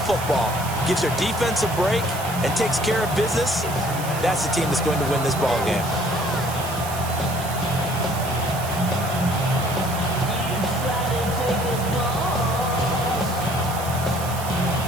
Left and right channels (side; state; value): right; noise; hiss, 11 dB below the sound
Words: gives their defense a break, and takes care of business, that's the team that's going to win this ball game.